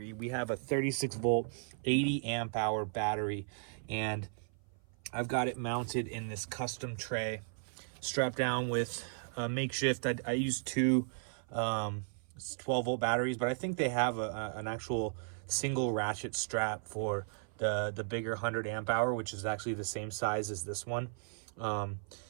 We have a 36 volt 80 amp hour battery, and I've got it mounted in this custom tray, strapped down with a makeshift. I use two 12 volt batteries, but I think they have an actual single ratchet strap for the bigger 100 amp hour, which is actually the same size as this one.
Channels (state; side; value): silent; left; 54 dB below the other